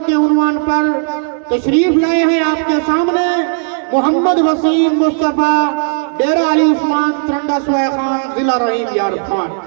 کے عنوان پر تشریف لائے ہیں آپ کے سامنے محمد وسیم مصطفیٰ ڈیرہ علی عثمان، ترنڈا سوئے خان، ضلع رحیم یار خان۔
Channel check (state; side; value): silent; left; digital silence